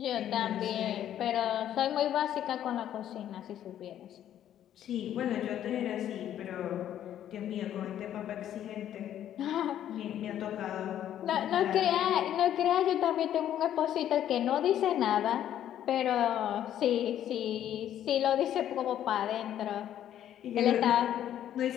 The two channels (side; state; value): right; quieter; 11.0 dB